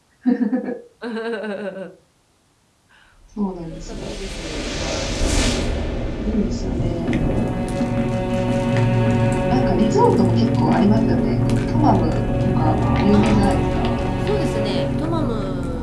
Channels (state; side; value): identical; both; correlation 1.00